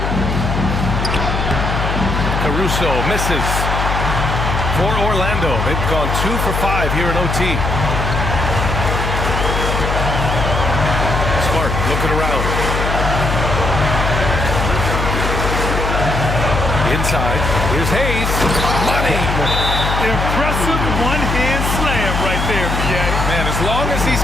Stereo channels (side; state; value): left; noise; hum, 1 dB below the sound